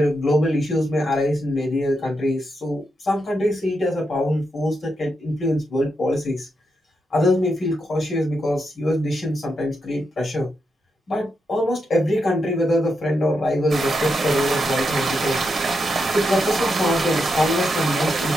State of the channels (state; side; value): normal; both; correlation 0.84